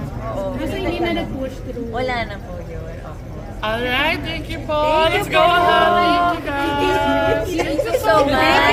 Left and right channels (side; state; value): both; identical; correlation 1.00